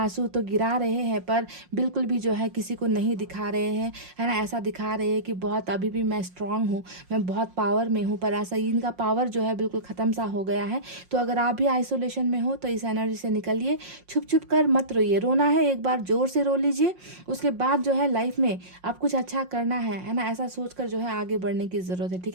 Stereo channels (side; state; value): left; late; 5.6 ms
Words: तो गिरा रहे हैं पर बिल्कुल भी जो है किसी को नहीं दिखा रहे हैं, है ना। ऐसा दिखा रहे हैं कि बहुत अभी भी मैं स्ट्रांग हूँ, मैं बहुत पावर में हूँ, पर ऐसा इनका पावर जो है बिल्कुल ख़त्म सा हो गया है। तो अगर आप भी आइसोलेशन में हो तो इस एनर्जी से निकलिए, छुप छुप कर मत रोइए। रोना है एक बार जोर से रो लीजिए, उसके बाद जो है लाइफ में आप कुछ अच्छा करना है ना, ऐसा सोचकर जो है आगे बढ़ने की ज़रूरत है, ठीक